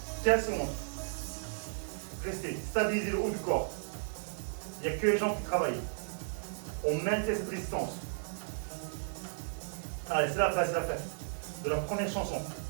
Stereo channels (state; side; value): silent; left; 55 dB below the other